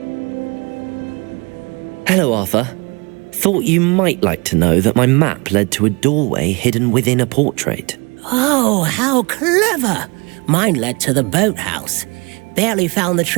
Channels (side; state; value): left; quieter; 28.7 dB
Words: Hello, Arthur. Thought you might like to know that my map led to a doorway hidden within a portrait. Oh, how clever! Mine led to the boathouse. Barely found the